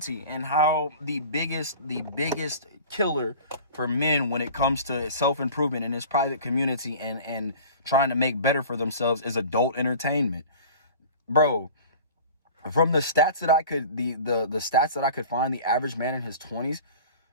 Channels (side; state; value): both; inverted; correlation -0.41